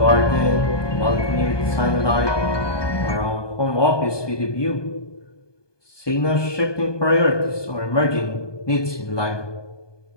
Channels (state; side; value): late; right; 1.2 ms